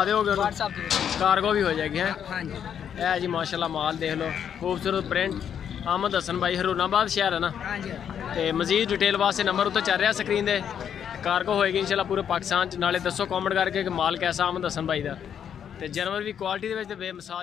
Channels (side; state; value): right; quieter; 8.5 dB